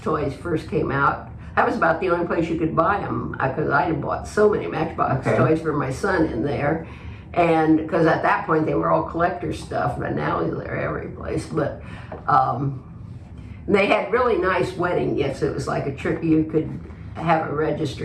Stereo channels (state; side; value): identical; both; correlation 1.00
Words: first came out, that was about the only place you could buy them, because I had bought so many Matchbox toys for my son in there. And because at that point they were all collector stuff, but now they're every place. But they had really nice wedding gifts. It was like a trick. You could have a